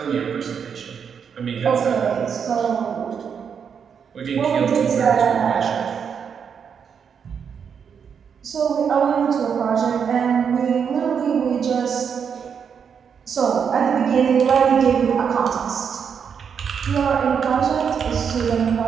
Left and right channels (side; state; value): left; quieter; 7.0 dB